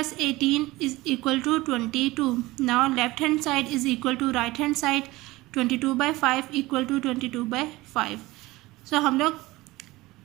18 is equal to 22. Now left hand side is equal to right hand side. 22 by 5 equal to 22 by 5. So हम लोग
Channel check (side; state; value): left; quieter; 19.8 dB